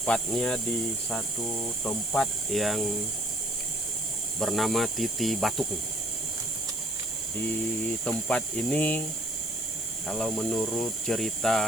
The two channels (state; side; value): noise; left; hiss, 12 dB below the sound